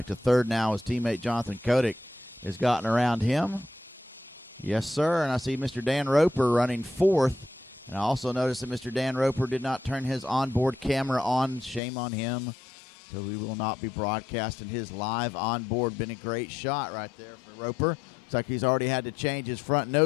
to third now. His teammate Jonathan Kotick has gotten around him. Yes, sir, and I see Mr. Dan Roper running fourth. And I also noticed that Mr. Dan Roper did not turn his onboard camera on. Shame on him. So we will not be broadcasting his live onboard. Been a great shot right there for Roper. Looks like he's already had to change his front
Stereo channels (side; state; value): right; drops out; at 11.8 s